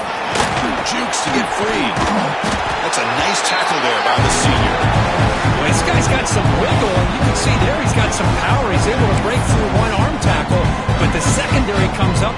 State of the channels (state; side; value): identical; both; correlation 1.00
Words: Jukes to get free. That's a nice tackle there by the senior. Well, this guy's got some wiggle, and you can see there he's got some power. He's able to break through one arm tackle, but the secondary comes up